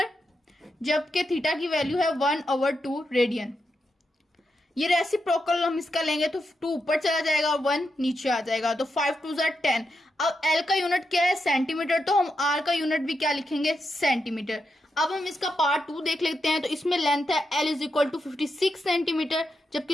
जबकि थीटा की वैल्यू है 1/2 रेडियन। ये रेसिप्रोकल हम इसका लेंगे तो 2 ऊपर चला जाएगा और 1 नीचे आ जाएगा, तो 5 2 10। अब एल का यूनिट क्या है, सेंटीमीटर, तो हम आर का यूनिट भी क्या लिखेंगे, सेंटीमीटर। अब हम इसका पार्ट 2 देख लेते हैं। तो इसमें लेंथ है L is equal to 56 centimetre,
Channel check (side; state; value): both; normal; correlation 0.85